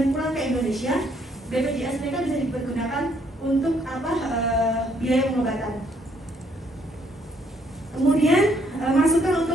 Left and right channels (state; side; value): normal; both; correlation 0.68